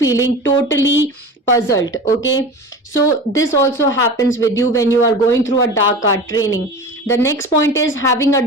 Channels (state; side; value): normal; both; correlation 0.33